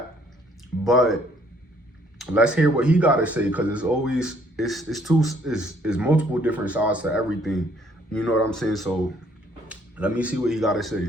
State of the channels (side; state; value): both; normal; correlation 0.63